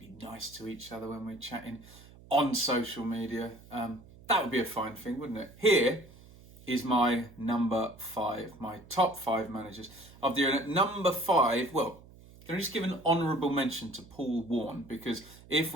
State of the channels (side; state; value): right; noise; hum, 22 dB below the sound